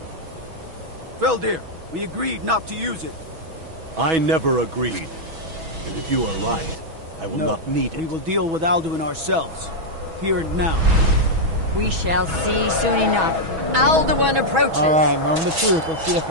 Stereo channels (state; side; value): late; left; 6.2 ms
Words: Feldir, we agreed not to use it. I never agreed. And if you are right, I will not need it. We will deal with Alduin ourselves. Here and now. We shall see soon enough. Alduin approaches. Alright, moment of truth. Let's see if